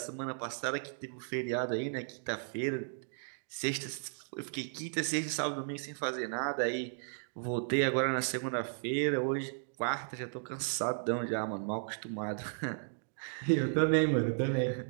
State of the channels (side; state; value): left; silent; digital silence